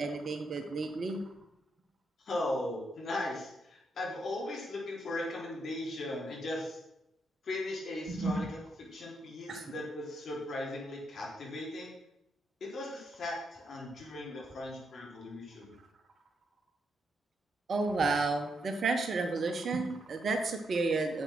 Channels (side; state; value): both; normal; correlation 0.79